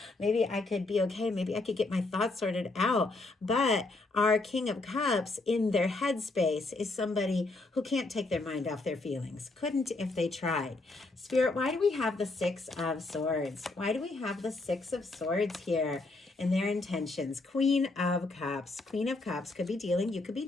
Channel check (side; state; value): right; quieter; 3.3 dB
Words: maybe I could be okay. Maybe I could get my thoughts sorted out. But our King of Cups in their headspace is somebody who can't take their mind off their feelings. Couldn't if they tried. Spirit, why do we have the Six of Swords? Why do we have the Six of Swords here in their intentions? Queen of Cups. Queen of Cups could be dealing, you could be